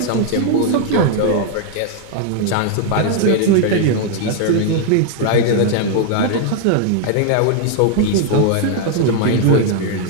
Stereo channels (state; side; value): different; both; correlation 0.00